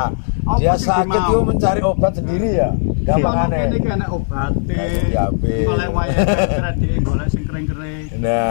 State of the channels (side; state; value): right; silent; digital silence